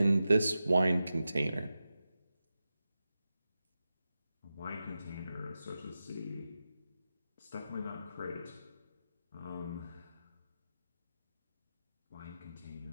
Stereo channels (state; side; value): inverted; both; correlation -0.92